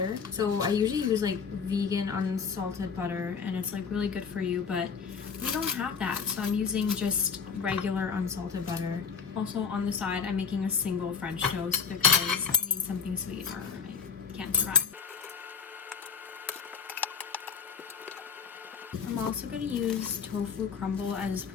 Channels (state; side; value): quieter; right; 6.1 dB